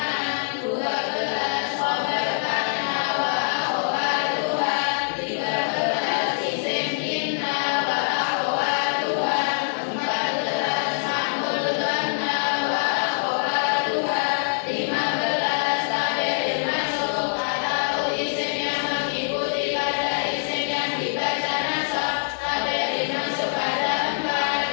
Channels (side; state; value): right; silent; digital silence